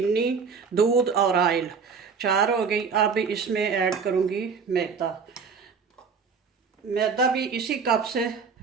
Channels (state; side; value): quieter; left; 5.6 dB